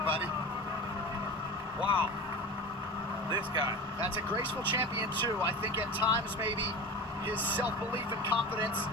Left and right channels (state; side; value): normal; both; correlation 0.31